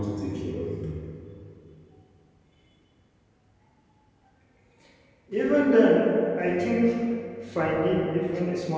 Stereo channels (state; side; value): identical; both; correlation 1.00